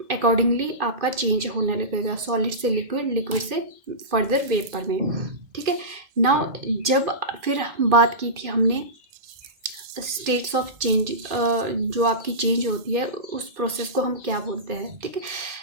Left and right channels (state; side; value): late; left; 2.5 ms